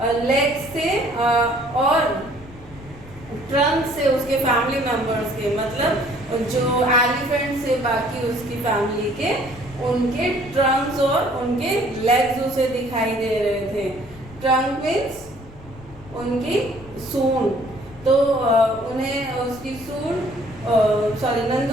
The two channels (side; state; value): left; noise; rumble, 19 dB below the sound